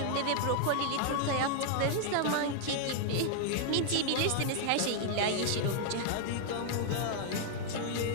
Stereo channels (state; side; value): different; both; correlation 0.00